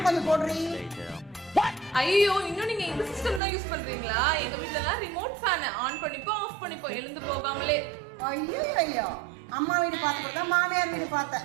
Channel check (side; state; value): left; drops out; at 3.4 s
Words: கொஞ்சம் போடுறீ. ஐயோ, இன்னும் நீங்க இந்த சிஸ்டம் தான் யூஸ் பண்றீங்களா? எங்க வீட்ல எல்லாம் ரிமோட் ஃபேன் ஆன் பண்ணிப்போ ஆஃப் பண்ணிப்போ எழுந்து போகாமலே. ஐயோ ஐயோ, அம்மா வீடு பார்த்துட்டு தான் மாமியார் வீடு பார்த்தேன்.